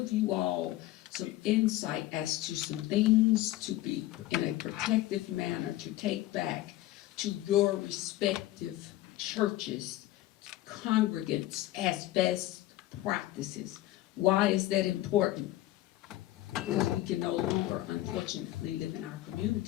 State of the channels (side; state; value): right; quieter; 15.8 dB